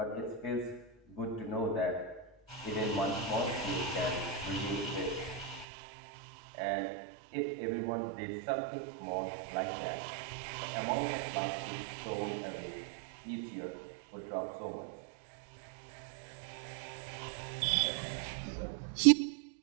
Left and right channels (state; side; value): drops out; left; at 5.7 s